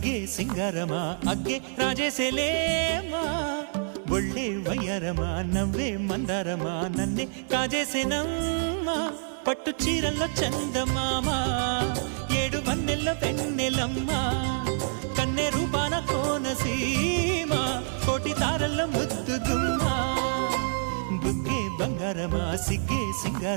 సింగారమా అగ్గే రాజేసేలేమా ఒళ్ళే వయ్యారమా నవ్వే మందారమా నన్నే కాజేసేనమ్మా పట్టు చీరల్లో చందమామా ఏడు వన్నెల్లో వెన్నెలమ్మా కన్నె రూపాన కోనసీమ కోటి తారల్లో ముద్దుగుమ్మా బుగ్గే బంగారమా సిగ్గే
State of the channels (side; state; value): left; silent; 60 dB below the other